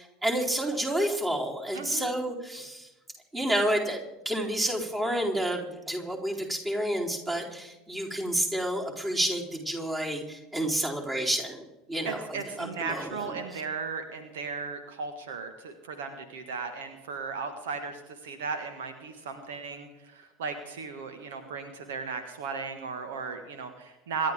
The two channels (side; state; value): both; normal; correlation 0.60